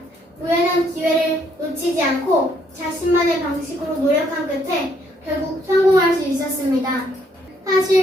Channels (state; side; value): normal; both; correlation 0.69